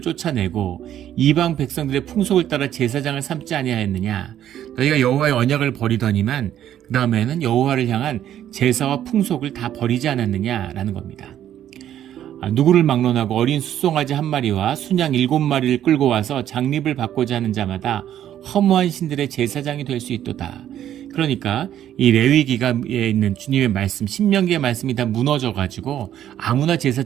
쫓아내고 이방 백성들의 풍속을 따라 제사장을 삼지 아니하였느냐. 너희가 여호와의 언약을 버리더니만 그 다음에는 여호와를 향한 제사와 풍속을 다 버리지 않았느냐라는 겁니다. 누구를 막론하고 어린 숫송아지 한 마리와 순양 7마리를 끌고 와서 장립을 받고자 하는 자마다 허무한 신들의 제사장이 될 수 있도다. 그러니까 이 레위기가에 있는 주님의 말씀, 신명기의 말씀이 다 무너져가지고 아무나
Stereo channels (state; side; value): quieter; left; 11.1 dB